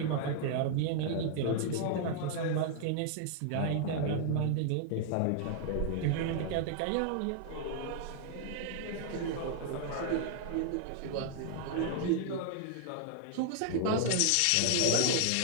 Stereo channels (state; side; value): different; both; correlation -0.01